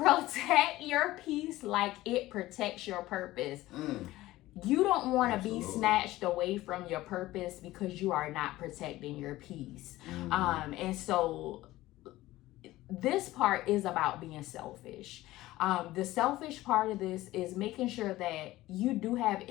your peace like it protects your purpose. You don't want to be snatched away from your purpose because you are not protecting your peace. And so this part is about being selfish. The selfish part of this is making sure that you do have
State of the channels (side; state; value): right; quieter; 16.9 dB